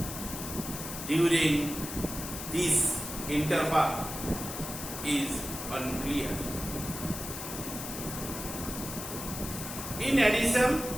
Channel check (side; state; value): left; noise; hiss, 7 dB below the sound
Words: during this interval is unclear. In addition,